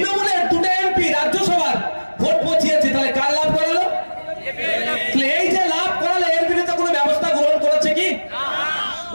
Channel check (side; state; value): both; inverted; correlation -1.00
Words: দুটো এমপি রাজ্যসভার ভোট পচিয়েছে, তাহলে কার লাভ করালো? এই যে লাভ করালো, এর বিরুদ্ধে কোনো ব্যবস্থা গ্রহণ করেছে কি?